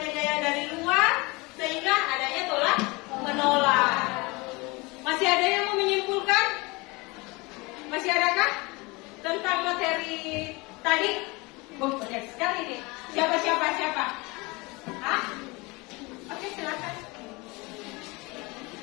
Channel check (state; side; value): quieter; right; 25.1 dB